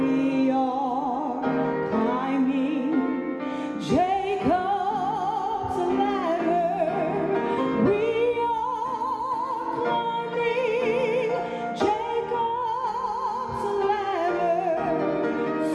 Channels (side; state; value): both; identical; correlation 1.00